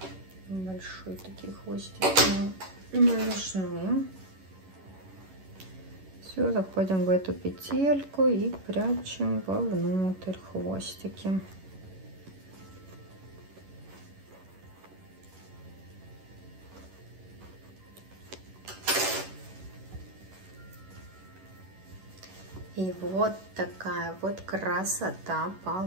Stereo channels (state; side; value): late; left; 11 ms